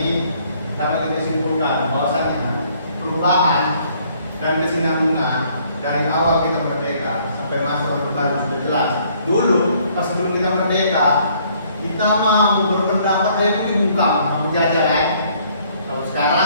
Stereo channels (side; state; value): both; inverted; correlation -0.63